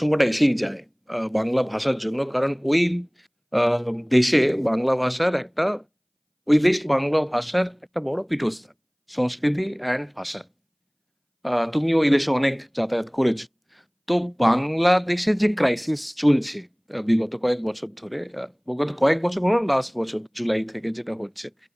এসেই যায় বাংলা ভাষার জন্য, কারণ আহ, দেশে বাংলা ভাষার একটা বাংলা ভাষার একটা বড় পীঠস্থান, সংস্কৃতি অ্যান্ড ভাষা। তুমি ওই দেশে অনেক যাতায়াত করেছো। তো বাংলাদেশে যে ক্রাইসিস চলছে বিগত কয়েক বছর ধরে, বিগত কয়েক বছর বলো, লাস্ট বছর জুলাই থেকে যেটা হচ্ছে,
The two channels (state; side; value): identical; both; correlation 1.00